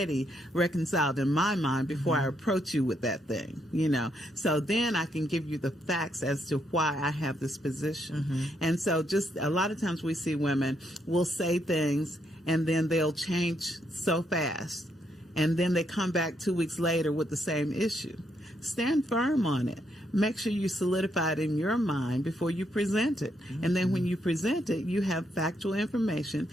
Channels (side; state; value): both; normal; correlation 0.76